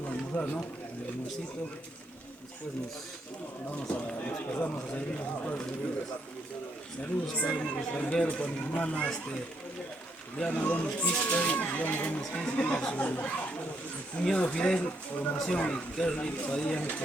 a almorzar, ¿no? El almuercito. Después nos pasamos a servir los padres. Saludos para mi extranjero, para mi hermana, Diana Gómez Quispe, su cuñado Fidel, formación, y Kerly Padilla, mi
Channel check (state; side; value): normal; both; correlation 0.75